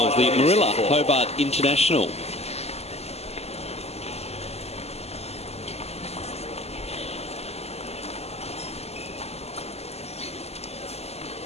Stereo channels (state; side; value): late; right; 0.30 ms